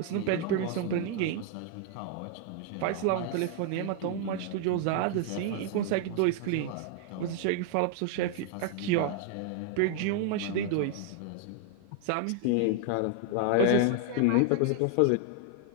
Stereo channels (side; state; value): both; different; correlation 0.00